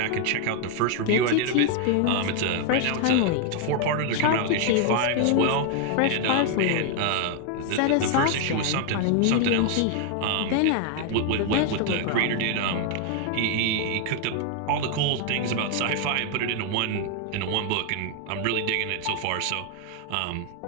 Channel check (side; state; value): both; different; correlation 0.00